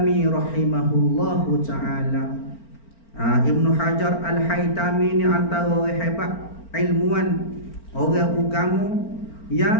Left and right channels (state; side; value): late; right; 4.4 ms